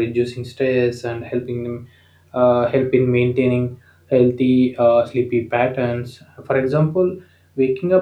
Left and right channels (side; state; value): both; identical; correlation 1.00